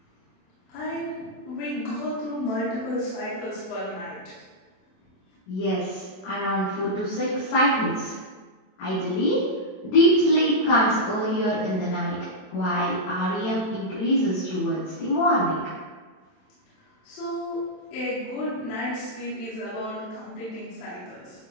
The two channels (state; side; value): late; right; 27 ms